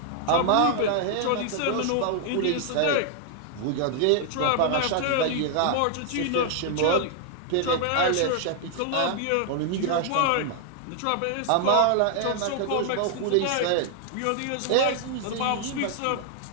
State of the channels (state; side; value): different; both; correlation 0.00